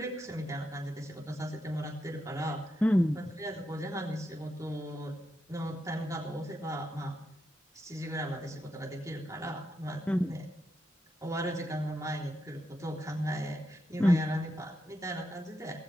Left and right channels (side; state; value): both; normal; correlation 0.84